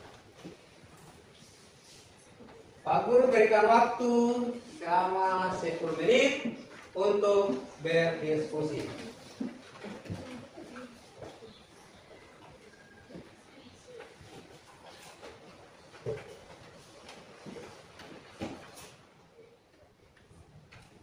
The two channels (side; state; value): both; identical; correlation 1.00